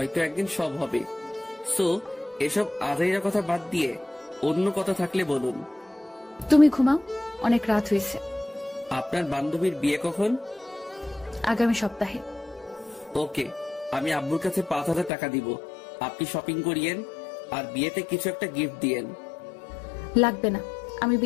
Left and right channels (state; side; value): drops out; right; at 15.1 s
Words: একদিন সব হবে। সো এসব আজাইরা কথা বাদ দিয়ে অন্য কথা থাকলে বলুন। তুমি ঘুমাও, অনেক রাত হয়েছে। আপনার বান্ধবীর বিয়ে কখন? আগামী সপ্তাহে। ওকে, আমি আব্বুর কাছে 5,000 টাকা দিব। আপনি শপিং করিয়েন আর বিয়েতে কিছু একটা গিফট দিয়েন। লাগবে না, আমি